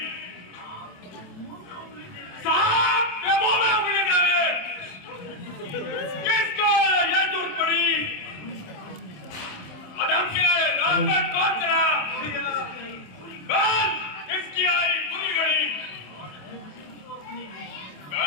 सांप के मुंह में उंगली देवे। किसको ये जरूरत पड़ी? आदम के रास्ते कौन चला? बस किसकी आई बुरी घड़ी?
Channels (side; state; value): right; late; 27 ms